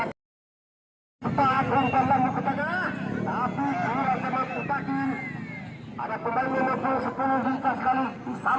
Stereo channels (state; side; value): identical; both; correlation 1.00